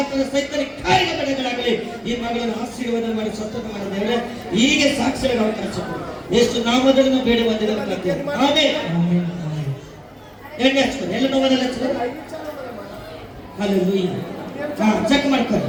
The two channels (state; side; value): identical; both; correlation 1.00